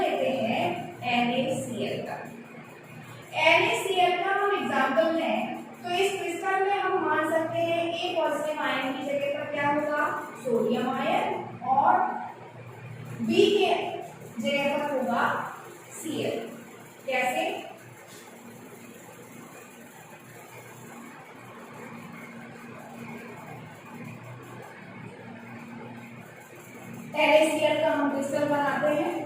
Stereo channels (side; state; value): both; identical; correlation 1.00